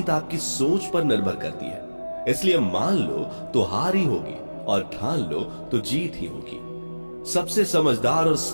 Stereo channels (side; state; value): both; inverted; correlation -1.00